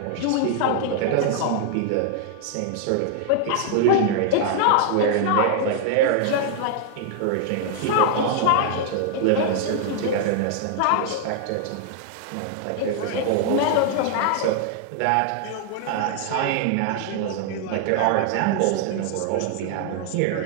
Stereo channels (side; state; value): both; different; correlation 0.00